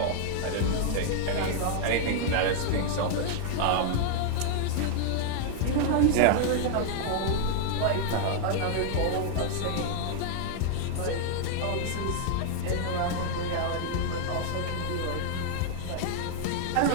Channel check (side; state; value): both; different; correlation 0.00